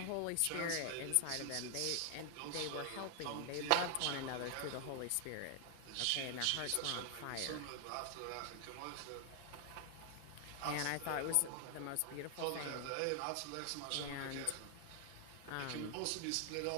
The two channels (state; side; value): different; both; correlation 0.00